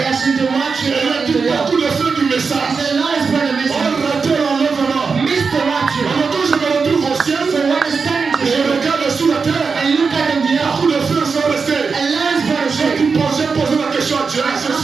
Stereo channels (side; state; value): left; quieter; 5.1 dB